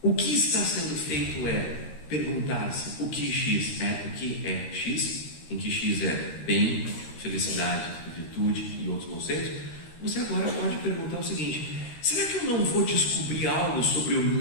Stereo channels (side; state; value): right; late; 13 ms